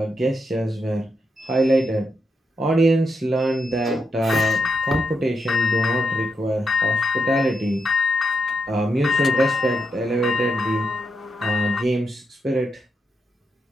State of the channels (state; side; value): normal; both; correlation 0.83